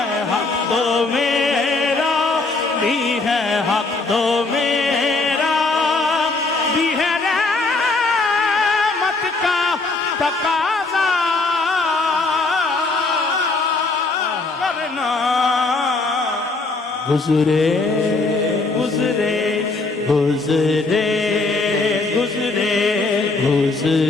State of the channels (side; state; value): right; quieter; 3.6 dB